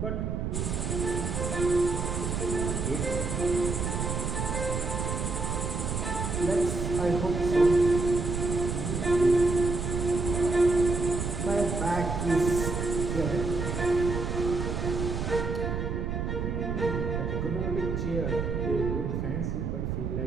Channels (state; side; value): noise; right; rumble, 2 dB below the sound